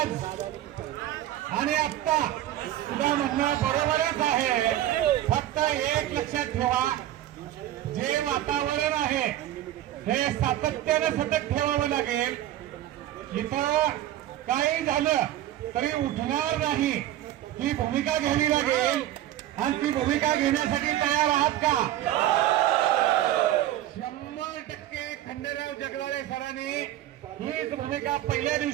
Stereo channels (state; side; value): quieter; left; 13.3 dB